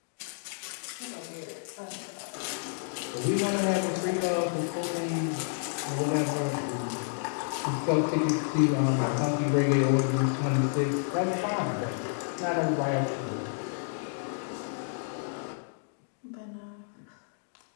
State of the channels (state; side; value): silent; right; digital silence